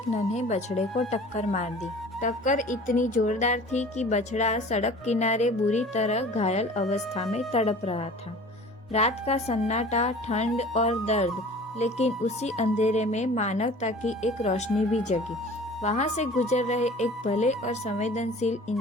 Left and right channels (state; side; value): normal; both; correlation 0.44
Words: नन्हे बछड़े को टक्कर मार दी। टक्कर इतनी जोरदार थी कि बछड़ा सड़क किनारे बुरी तरह घायल अवस्था में तड़प रहा था। रात का सन्नाटा, ठंड और दर्द, लेकिन उसी अंधेरे में मानवता की एक रोशनी भी जगी। वहां से गुजर रहे एक भले और संवेदनशील